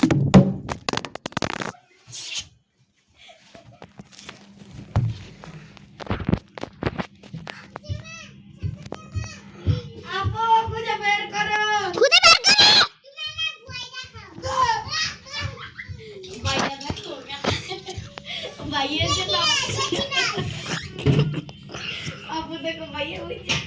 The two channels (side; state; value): both; identical; correlation 1.00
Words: আপু খুঁজে বের করো। খুদে বের করো ভাইয়া দেখো ভাইয়া যে না আপু দেখো ভাইয়া হইছে,